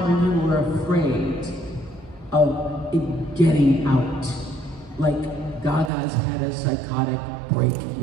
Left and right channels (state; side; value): drops out; left; at 5.9 s